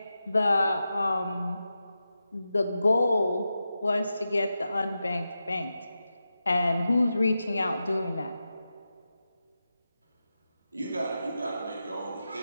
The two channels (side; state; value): both; inverted; correlation -0.91